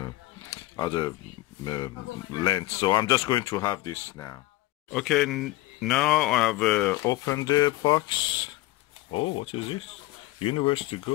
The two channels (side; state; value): right; quieter; 18.0 dB